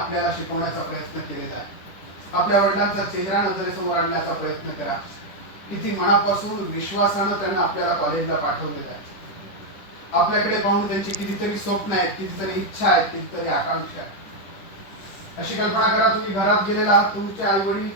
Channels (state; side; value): late; right; 10 ms